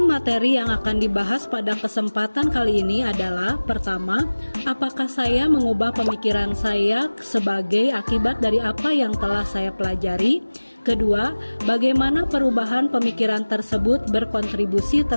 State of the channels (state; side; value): inverted; both; correlation -1.00